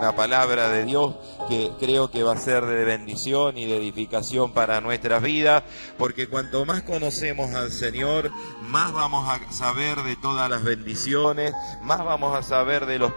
palabra de Dios que creo que va a ser de bendición y de edificación para nuestras vidas, porque cuanto más conocemos al Señor, más vamos a saber de todas las bendiciones, más vamos a saber de los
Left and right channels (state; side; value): inverted; both; correlation -1.00